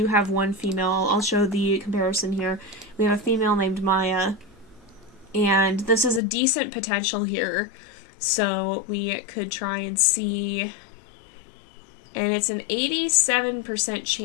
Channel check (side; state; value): right; drops out; at 6.2 s